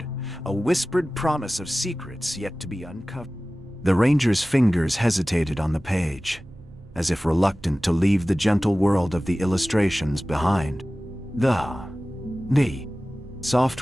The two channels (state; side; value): noise; right; rumble, 21 dB below the sound